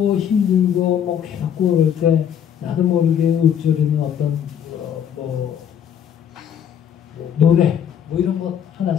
힘들고 뭐 괴롭고 그럴 때 나도 모르게 읊조리는 어떤 노래 뭐 이런 것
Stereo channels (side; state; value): right; quieter; 8.8 dB